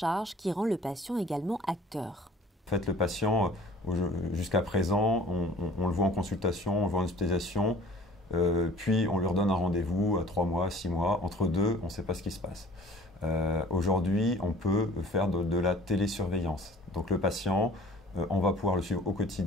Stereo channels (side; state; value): both; normal; correlation 0.49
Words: qui rend le patient également acteur. En fait, le patient, jusqu'à présent, on le voit en consultation, on le voit en hospitalisation, puis on lui redonne un rendez-vous à 3 mois, 6 mois. Entre deux, on ne sait pas ce qui se passe. Aujourd'hui, on peut faire de la télésurveillance. Donc le patient, on va pouvoir le suivre au